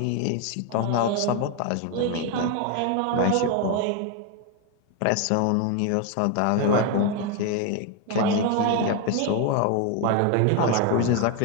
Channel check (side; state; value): both; different; correlation 0.01